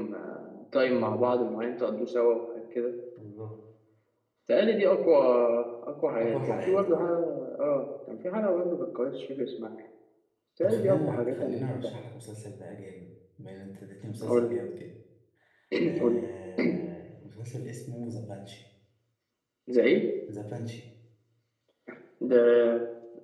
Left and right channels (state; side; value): identical; both; correlation 1.00